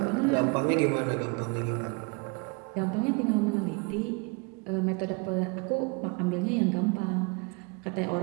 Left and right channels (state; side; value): quieter; left; 30.8 dB